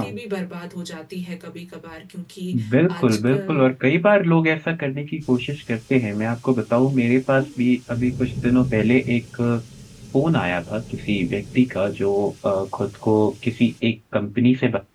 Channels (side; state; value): both; identical; correlation 1.00